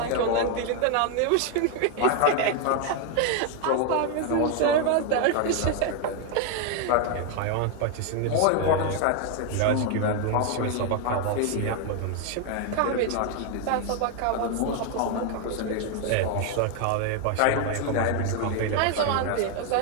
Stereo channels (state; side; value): different; both; correlation 0.01